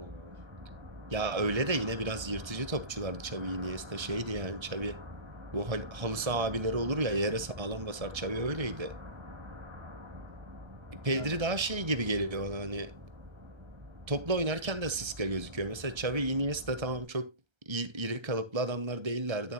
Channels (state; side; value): late; left; 1.3 ms